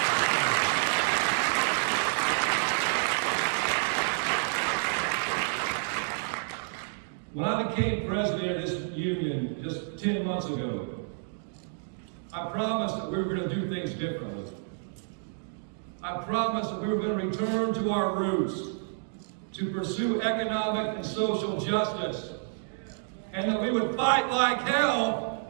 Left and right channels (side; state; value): left; silent; digital silence